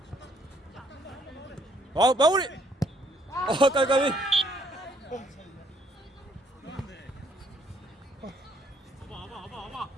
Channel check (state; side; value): normal; both; correlation 0.67